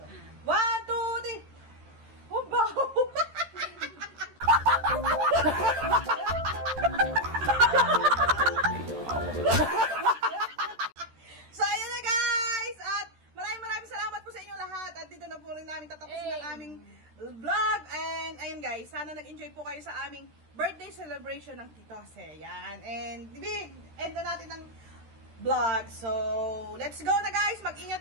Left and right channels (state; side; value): late; left; 13 ms